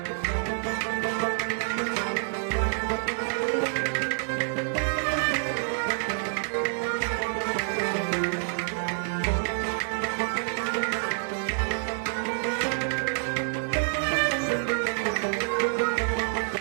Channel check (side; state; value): left; silent; digital silence